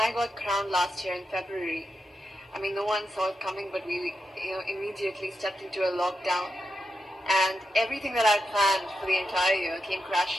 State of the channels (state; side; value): normal; both; correlation 0.87